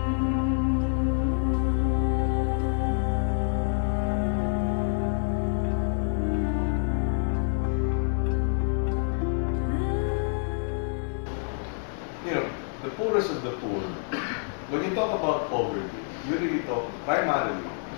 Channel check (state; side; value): silent; right; digital silence